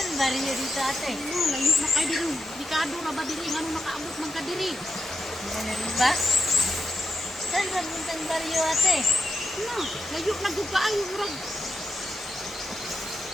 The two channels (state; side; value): normal; both; correlation 0.86